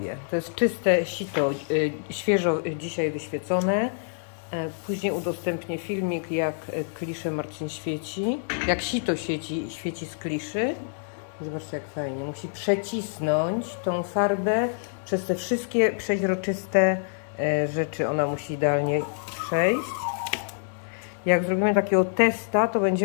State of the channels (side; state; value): right; silent; digital silence